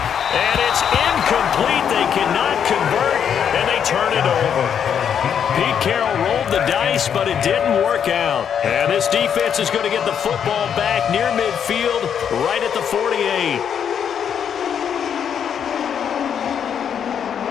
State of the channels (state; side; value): quieter; right; 8.1 dB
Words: And it's incomplete. They cannot convert, and they turn it over. Pete Carroll rolled the dice, but it didn't work out. And this defense is going to get the football back near midfield, right at the 48.